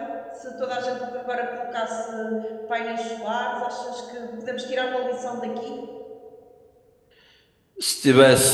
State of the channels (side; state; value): both; identical; correlation 1.00